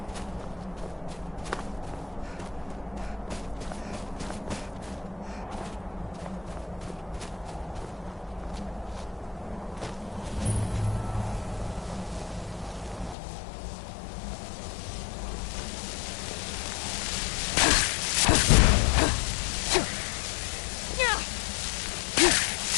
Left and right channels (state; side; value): drops out; right; at 13.2 s